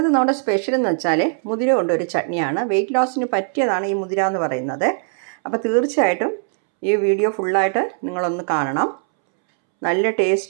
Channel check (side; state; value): left; silent; 66 dB below the other